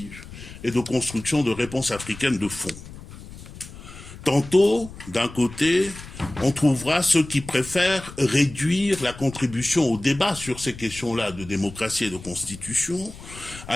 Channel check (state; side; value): noise; left; rumble, 15 dB below the sound